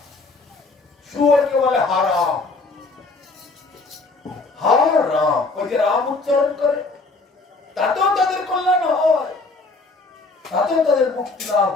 শুয়োরকে বলে হারাম, হারাম, ওই যে রাম উচ্চারণ করে, তাতেও তাদের কল্যাণ হয়, তাতেও তাদের মুক্তি লাভ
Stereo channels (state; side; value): quieter; right; 3.6 dB